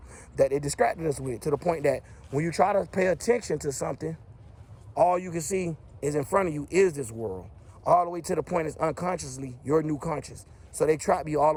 that they distracted us with, to the point that when you try to pay attention to something, all you can see is in front of you is this world. All the way to the point is unconsciously your new conscious. So they trap you all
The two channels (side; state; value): both; identical; correlation 1.00